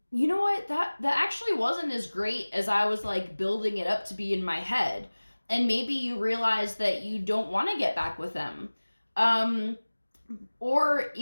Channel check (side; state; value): both; inverted; correlation -1.00